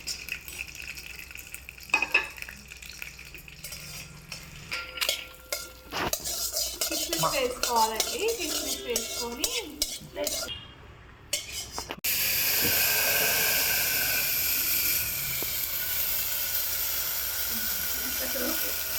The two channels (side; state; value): both; identical; correlation 1.00